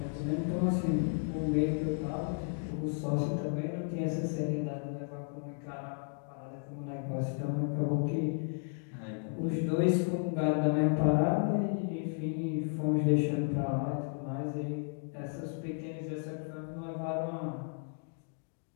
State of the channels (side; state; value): right; silent; 55 dB below the other